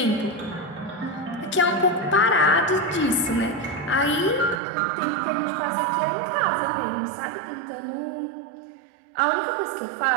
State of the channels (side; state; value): left; drops out; at 4.6 s